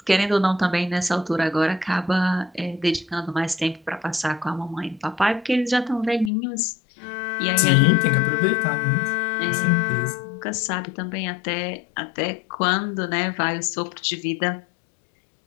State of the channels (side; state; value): right; drops out; at 6.3 s